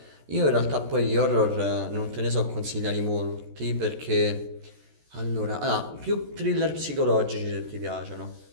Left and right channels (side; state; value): left; late; 14 ms